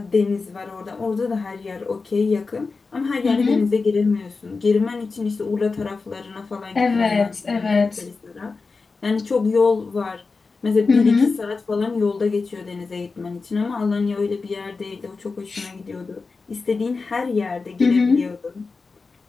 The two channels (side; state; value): right; quieter; 4.3 dB